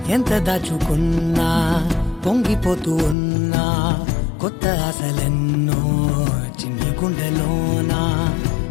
ఎంత దాచుకున్నా పొంగిపోతూ ఉన్నా, కొత్త ఆశలెన్నో చిన్ని గుండెలోనా,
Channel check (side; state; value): right; drops out; at 3.2 s